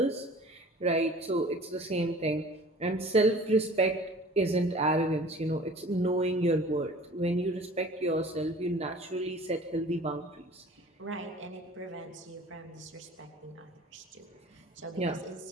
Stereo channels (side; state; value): both; normal; correlation 0.45